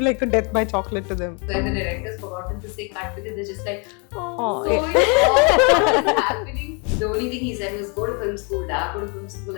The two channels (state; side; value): quieter; right; 34.8 dB